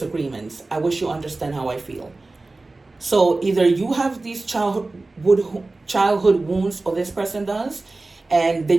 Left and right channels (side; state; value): left; quieter; 3.2 dB